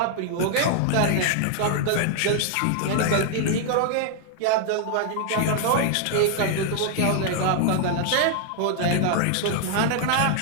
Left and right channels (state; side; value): different; both; correlation 0.00